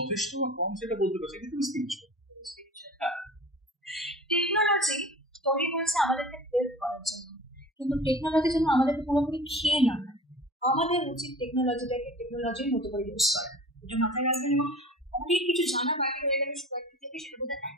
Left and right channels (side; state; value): both; normal; correlation 0.40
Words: কম সেটা বলতে পারছি, কিন্তু স্পিরিচুয়াল। হ্যাঁ, টেকনোলজি তৈরি হয়েছে আমাদেরকে হেল্প করার জন্য, কিন্তু টেকনোলজি যেন আমাদেরকে পুরোপুরি খেয়ে না নেয়। আমাদের উচিত টেকনোলজির মতো করে ইউজ করা, এটা মাথায় রাখবেন। এবং অনেক কিছু জানা বাকি রয়ে গেলে সবাইকে থেকে, সেটা বোধহয়